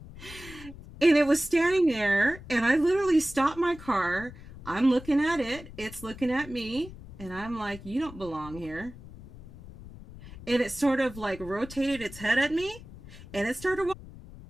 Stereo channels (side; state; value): left; noise; rumble, 16 dB below the sound